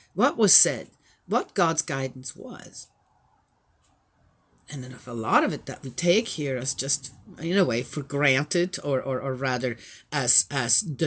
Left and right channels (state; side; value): identical; both; correlation 1.00